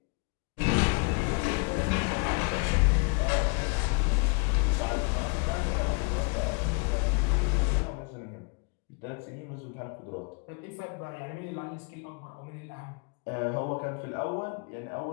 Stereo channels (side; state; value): right; quieter; 34.6 dB